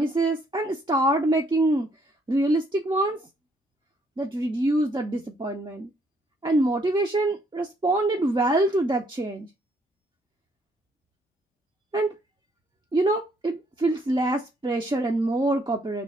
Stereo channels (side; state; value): both; normal; correlation 0.68